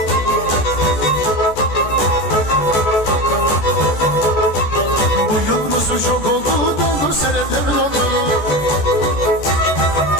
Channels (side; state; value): right; late; 14 ms